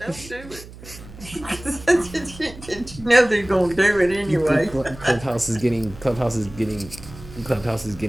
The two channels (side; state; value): right; noise; hum, 17 dB below the sound